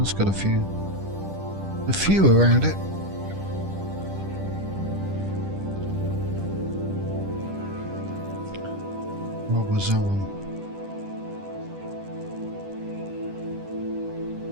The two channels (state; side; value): late; left; 10 ms